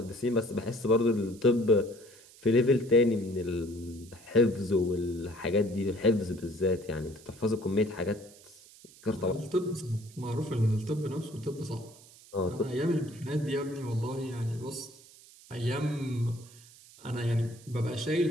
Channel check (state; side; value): noise; right; hiss, 22 dB below the sound